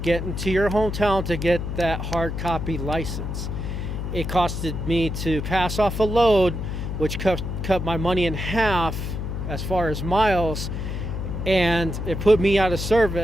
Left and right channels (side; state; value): left; noise; hum, 4 dB below the sound